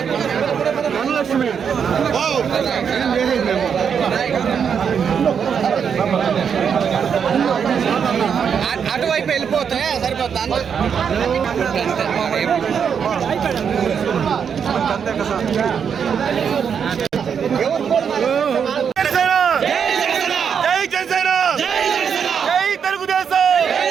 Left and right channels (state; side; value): quieter; left; 7.2 dB